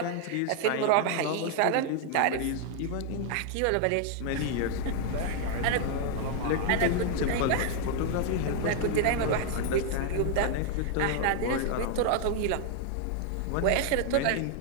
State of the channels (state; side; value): different; both; correlation 0.00